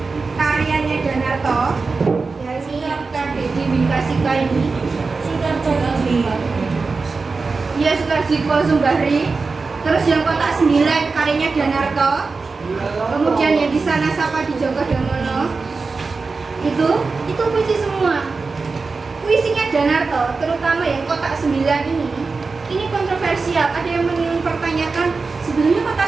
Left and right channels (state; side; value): quieter; left; 4.2 dB